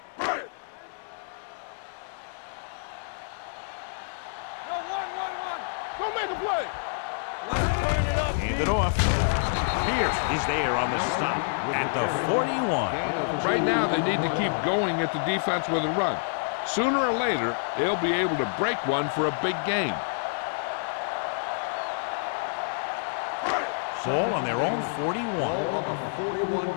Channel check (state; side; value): silent; right; digital silence